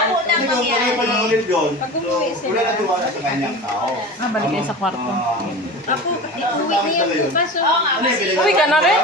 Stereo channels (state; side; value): normal; both; correlation 0.32